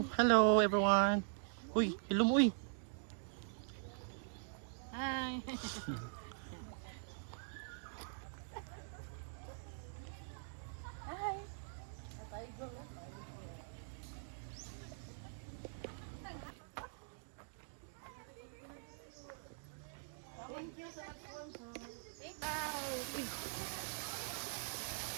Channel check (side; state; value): left; silent; digital silence